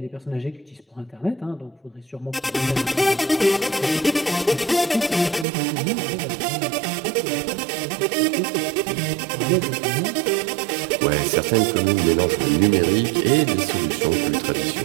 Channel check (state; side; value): drops out; left; at 5.5 s